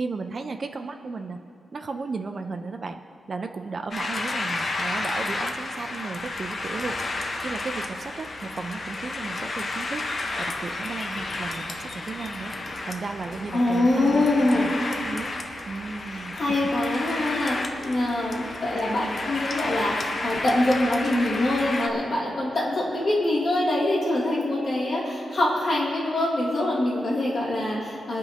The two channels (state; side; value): normal; both; correlation 0.88